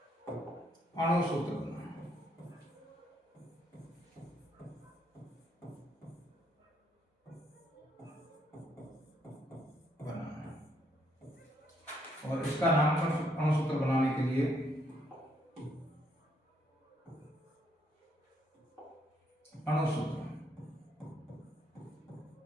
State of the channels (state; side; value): normal; both; correlation 0.72